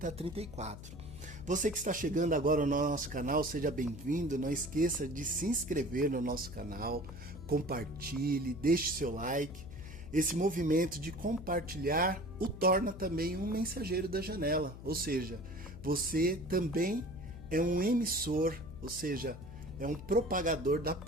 a 34. Você que está chegando agora no nosso canal, seja bem-vindo. Não esqueça de se inscrever no nosso canal, compartilhe, deixe seu like. Esse movimento de compartilhar o torna também um mensageiro da janela, ou seja, você também é um emissor, ou seja, é um propagador da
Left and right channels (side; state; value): left; noise; hum, 13 dB below the sound